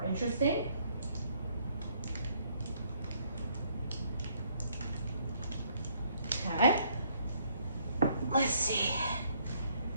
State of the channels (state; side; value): inverted; both; correlation -0.67